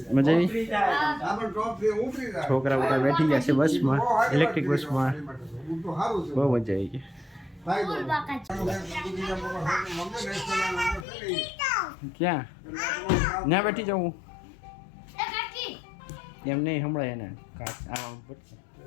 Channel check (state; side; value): drops out; right; at 11.1 s